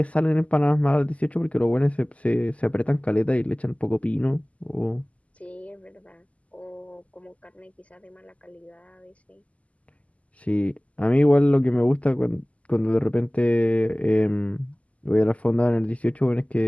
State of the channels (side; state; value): right; late; 0.068 ms